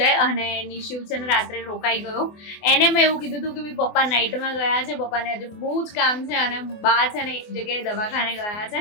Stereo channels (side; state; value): right; late; 24 ms